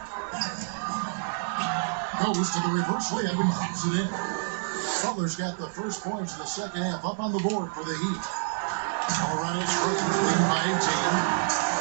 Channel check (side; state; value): left; silent; 58 dB below the other